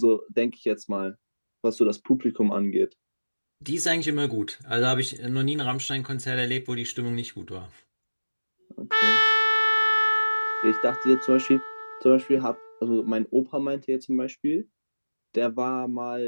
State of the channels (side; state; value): both; inverted; correlation -1.00